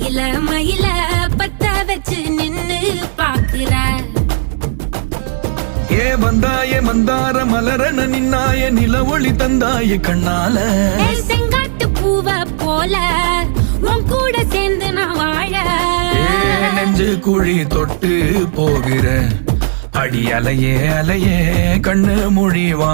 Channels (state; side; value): silent; left; digital silence